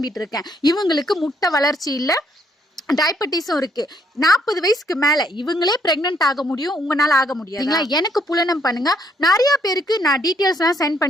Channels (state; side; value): normal; both; correlation 0.70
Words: இருக்கேன். இவங்களுக்கு முட்டை வளர்ச்சி இல்ல, டயபெட்டிஸும் இருக்கு. 40 வயசுக்கு மேல இவங்களே பிரெக்னன்ட் ஆக முடியும், உங்களால ஆக முடியாது. எனக்கு புலனம் பண்ணுங்க. நிறைய பேருக்கு நான் டீட்டெயில்ஸ் எல்லாம் சென்ட்